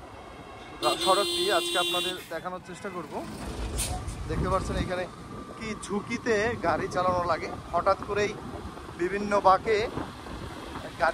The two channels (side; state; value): both; identical; correlation 1.00